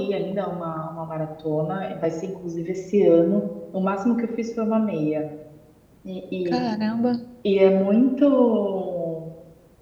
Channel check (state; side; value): identical; both; correlation 1.00